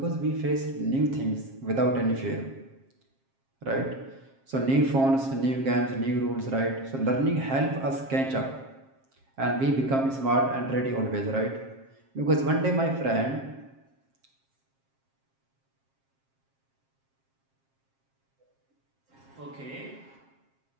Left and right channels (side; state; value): left; late; 7.5 ms